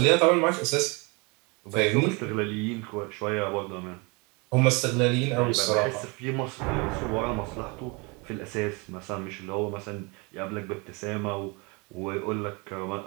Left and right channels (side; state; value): left; quieter; 29.2 dB